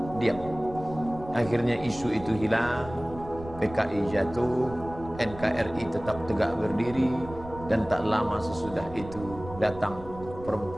diam. Akhirnya isu itu hilang, PKI jatuh, NKRI tetap tegak berdiri, dan tak lama sesudah itu datang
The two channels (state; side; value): noise; right; rumble, 15 dB below the sound